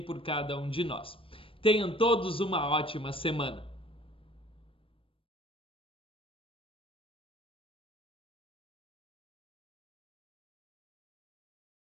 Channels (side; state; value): right; late; 0.26 ms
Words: cada um de nós. Tenham todos uma ótima semana.